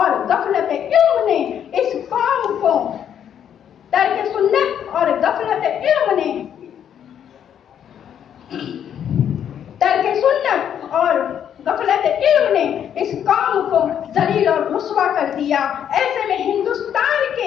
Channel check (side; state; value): right; quieter; 9.2 dB